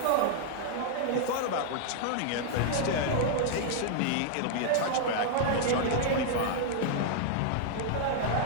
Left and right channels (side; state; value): both; different; correlation -0.01